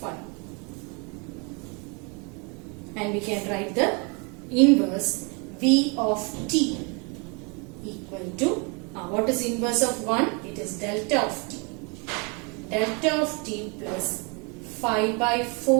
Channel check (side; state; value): left; quieter; 32.7 dB